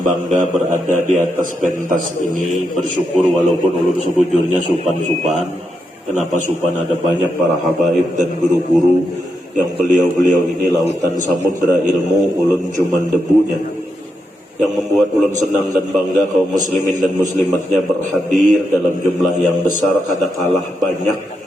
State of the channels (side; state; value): both; normal; correlation 0.84